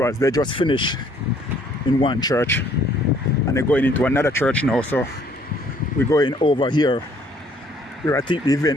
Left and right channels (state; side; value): normal; both; correlation 0.62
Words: they just finished in one church and they're going into another church now, so we're going over here. I think the